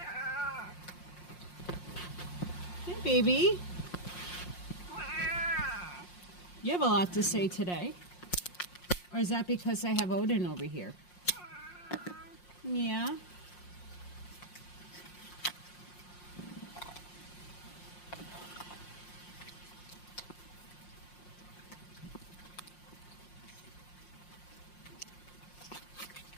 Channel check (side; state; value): right; late; 5.6 ms